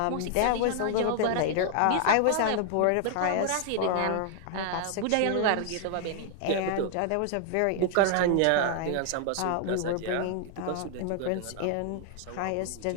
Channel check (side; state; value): both; different; correlation 0.00